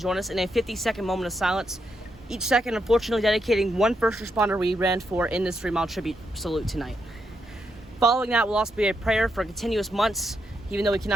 us in a 50-second moment of silence, each second unfortunately dedicating one first responder we ran for in this 3-mile tribute salute tonight. Following that will also be a prayer for continuous months, even though we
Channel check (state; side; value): normal; both; correlation 0.81